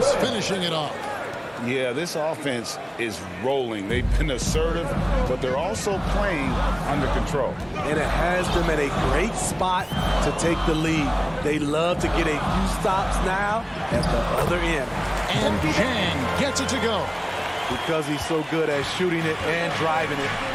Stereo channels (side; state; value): both; identical; correlation 1.00